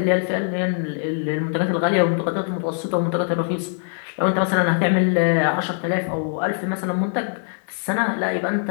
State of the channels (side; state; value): right; silent; digital silence